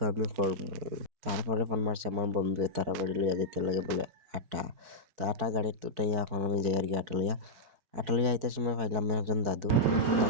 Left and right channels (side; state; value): left; late; 4.5 ms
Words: আমি করবো। তারপরে ফোন মারছে আমার বন্ধু, তারা বাড়ি লইয়া যেতে লাগে বলে আটা। তো আটা গাড়ির তুটাইয়া এখন আমি যাই আর কি আটা লইয়া আইতে সময় পাইলাম একজন দাদু।